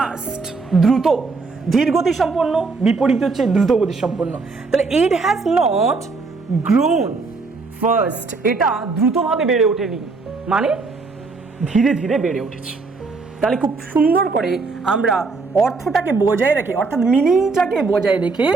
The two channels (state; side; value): quieter; left; 4.1 dB